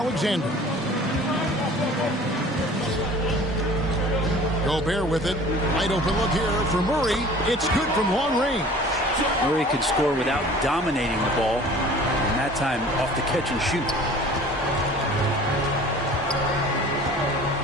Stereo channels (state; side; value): normal; both; correlation 0.46